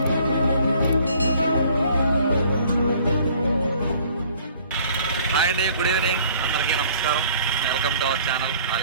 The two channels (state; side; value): inverted; both; correlation -0.55